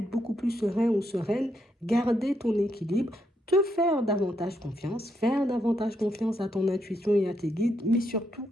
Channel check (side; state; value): both; normal; correlation 0.78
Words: beaucoup plus serein ou sereine, garder ton équilibre, te faire davantage confiance à ton intuition et à tes guides, mais surtout